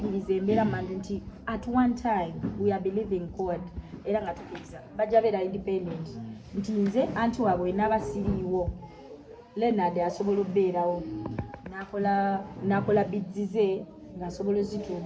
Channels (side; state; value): both; identical; correlation 1.00